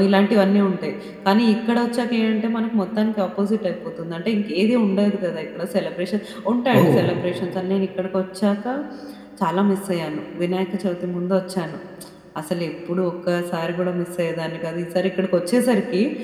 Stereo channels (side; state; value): both; identical; correlation 1.00